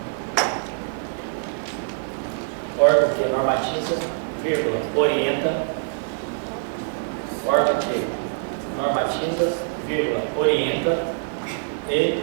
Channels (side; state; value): left; silent; digital silence